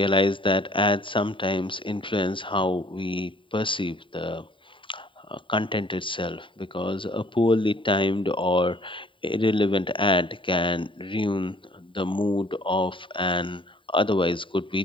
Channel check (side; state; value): right; late; 0.25 ms